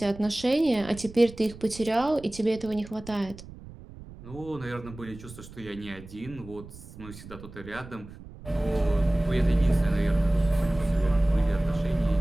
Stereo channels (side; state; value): right; noise; rumble, 16 dB below the sound